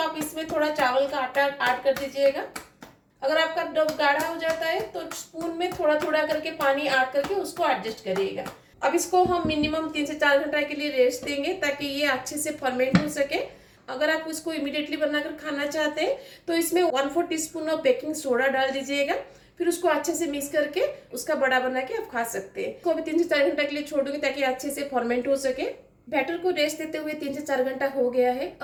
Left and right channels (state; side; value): identical; both; correlation 1.00